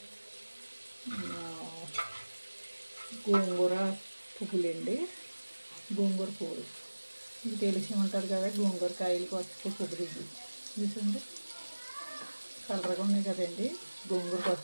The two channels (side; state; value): both; inverted; correlation -1.00